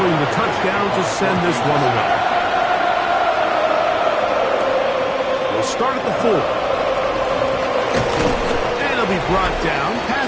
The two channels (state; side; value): identical; both; correlation 1.00